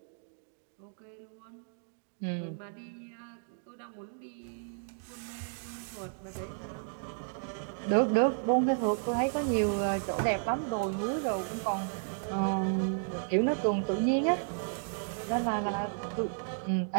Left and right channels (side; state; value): left; silent; digital silence